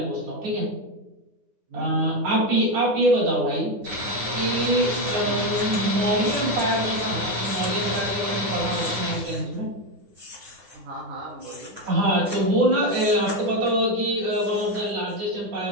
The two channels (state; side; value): late; left; 9.8 ms